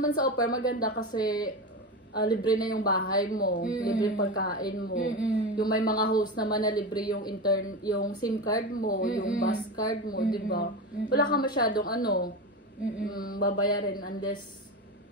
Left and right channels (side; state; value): both; normal; correlation 0.22